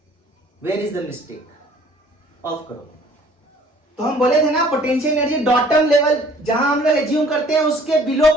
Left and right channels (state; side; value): normal; both; correlation 0.55